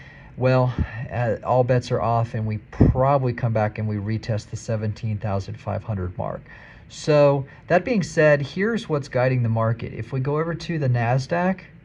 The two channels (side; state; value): both; identical; correlation 1.00